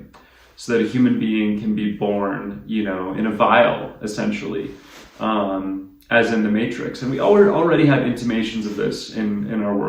so that a human being can be born, you know, in a vial, essentially, as in the Matrix. And we already have intimations of this in our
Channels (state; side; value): identical; both; correlation 1.00